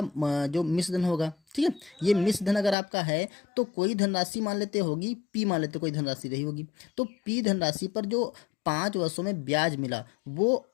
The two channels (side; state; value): right; drops out; at 2.8 s